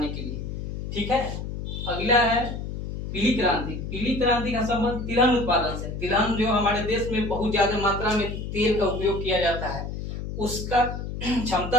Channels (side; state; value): left; noise; hum, 6 dB below the sound